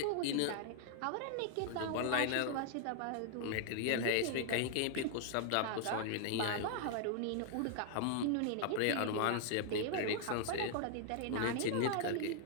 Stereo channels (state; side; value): different; both; correlation 0.00